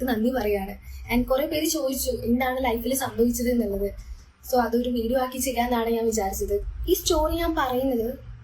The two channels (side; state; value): both; identical; correlation 1.00